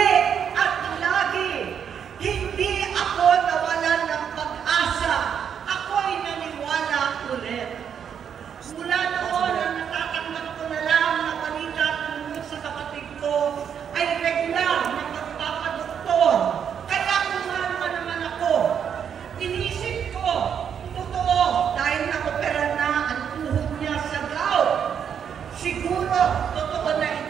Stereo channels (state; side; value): quieter; left; 8.0 dB